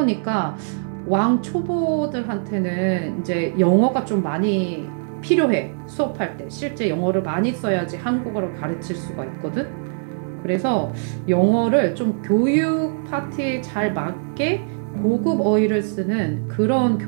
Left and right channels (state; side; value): silent; left; digital silence